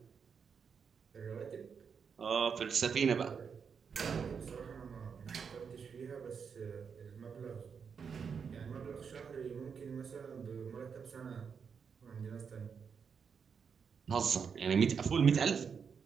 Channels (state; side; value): quieter; left; 6.4 dB